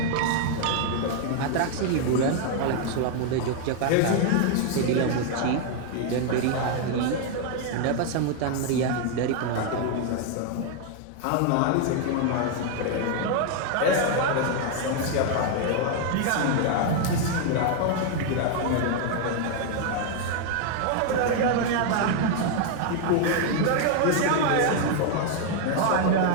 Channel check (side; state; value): both; different; correlation 0.00